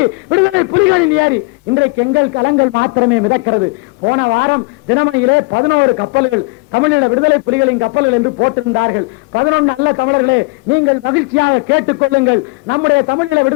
விடுதலை புலிகளின் ஏரி. இன்றைக்கு எங்கள் கலங்கள் மாத்திரமே மிதக்கிறது. போன வாரம் தினமணியிலே 11 கப்பல்கள் தமிழீழ விடுதலை புலிகளின் கப்பல்கள் என்று போட்டிருந்தார்கள். 11 அல்ல தமிழர்களே, நீங்கள் மகிழ்ச்சியாக கேட்டுக் கொள்ளுங்கள். நம்முடைய தமிழீழ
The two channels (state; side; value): quieter; right; 25.9 dB